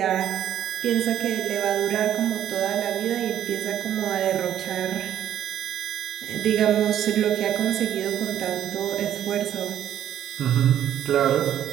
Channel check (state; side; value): quieter; left; 10.8 dB